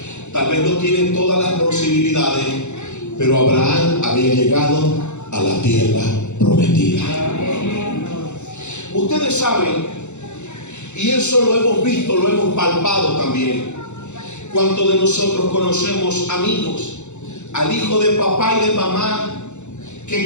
tal vez no tiene todas las posibilidades, pero Abraham había llegado a la tierra prometida. Ustedes saben, y eso lo hemos visto, lo hemos palpado también. ¿Cuántos de nosotros conocemos amigos, al hijo de papá y de mamá, que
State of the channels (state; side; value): late; right; 0.83 ms